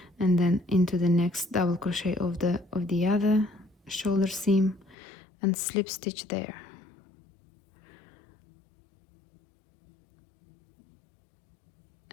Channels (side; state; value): right; drops out; at 5.0 s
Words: and then into the next double crochet of the other shoulder seam and slip stitch there.